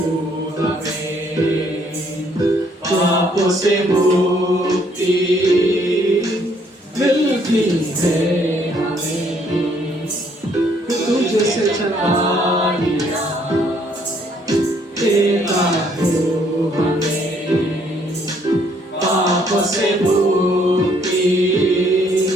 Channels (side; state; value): both; normal; correlation 0.66